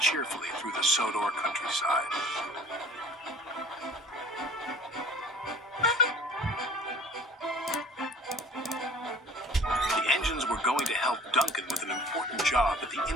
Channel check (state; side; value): normal; both; correlation 0.48